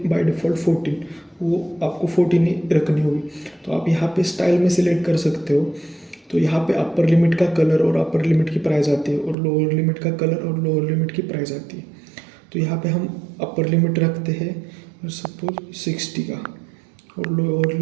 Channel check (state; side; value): drops out; left; at 9.3 s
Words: बाय डिफ़ॉल्ट 14, वो आपको 14 ही रखनी होगी। तो आप यहाँ पे स्टाइल में सिलेक्ट कर सकते हो। तो यहाँ पे अपर लिमिट का कलर और अपर लिमिट की प्राइस आती है और लोअर लिमिट का कलर और लोअर लिमिट की प्राइस आती है। तो यहाँ पे हम अपर लिमिट रखते हैं और सपोज 60 का और लोअर